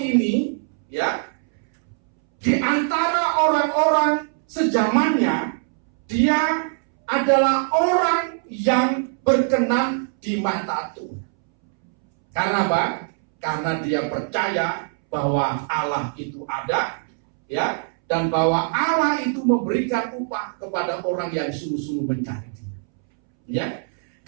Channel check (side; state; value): left; silent; 64 dB below the other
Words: ya, di antara orang-orang sezamannya, dia adalah orang yang berkenan di mata Tuhan. Karena apa? Karena dia percaya bahwa Allah itu ada, ya, dan bahwa Allah itu memberikan upah kepada orang yang sungguh-sungguh mencari Dia. Ya,